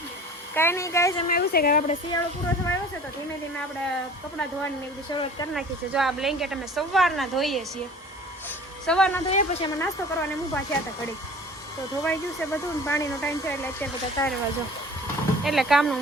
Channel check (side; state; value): both; normal; correlation 0.45